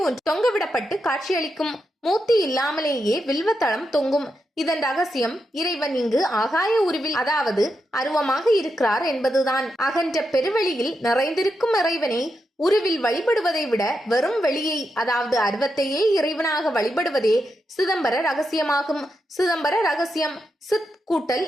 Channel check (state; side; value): normal; both; correlation 0.85